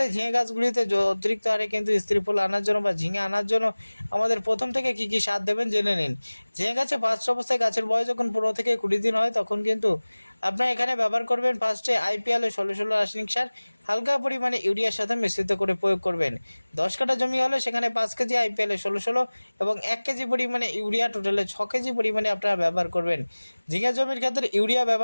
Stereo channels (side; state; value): both; inverted; correlation -1.00